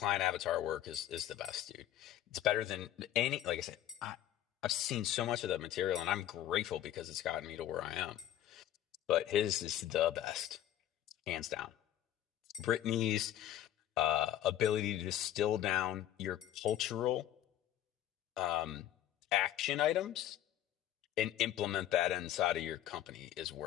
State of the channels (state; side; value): quieter; right; 12.2 dB